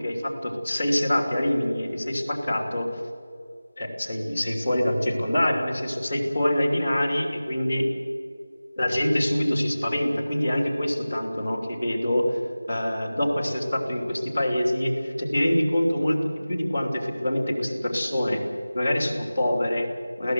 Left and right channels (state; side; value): inverted; both; correlation -0.97